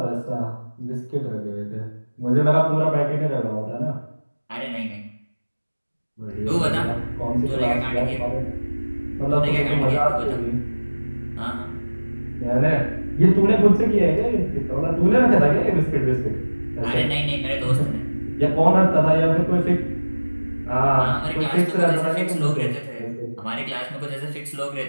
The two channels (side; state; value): both; inverted; correlation -1.00